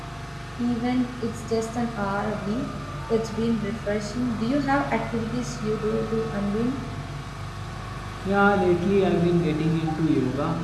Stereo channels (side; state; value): both; identical; correlation 1.00